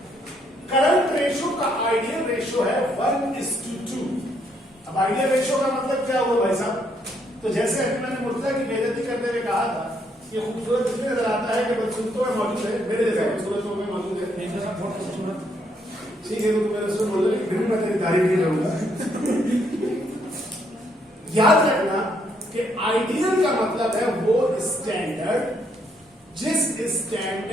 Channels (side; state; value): both; normal; correlation 0.72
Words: करंट रेशियो का आइडियल रेशियो है 1:2। अब आइडियल रेशियो का मतलब क्या हुआ भाई साहब? तो जैसे अभी मैंने मुर्तजा की बेइज्जती करते हुए कहा था, ये खूबसूरत इसलिए नजर आता है कि बदसूरतों में मौजूद है, मेरे जैसे खूबसूरतों में मौजूद है। ठीक है, तो मेरे से बोलो, फिर भी मैं तेरी तारीफ नहीं करूंगा। याद रखना कि आइडियल का मतलब है वो स्टैंडर्ड जिस